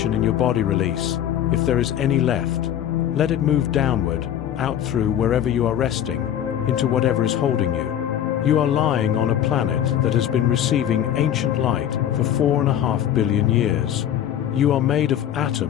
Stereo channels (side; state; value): right; quieter; 10.6 dB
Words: in your body release, if there is any left. Let it move downward, out through wherever you are resting, into whatever is holding you. You are lying on a planet that has been receiving ancient light for 4.5 billion years. You are made of